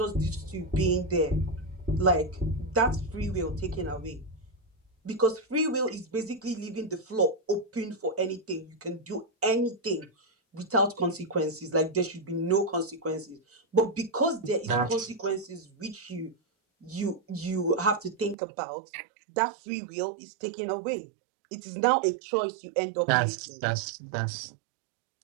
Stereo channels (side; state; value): left; drops out; at 18.4 s